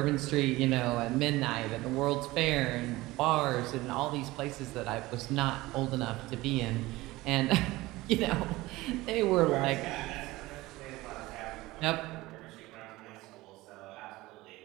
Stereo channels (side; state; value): left; quieter; 19.3 dB